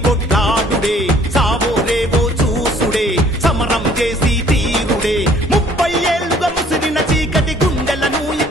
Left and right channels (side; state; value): both; normal; correlation 0.58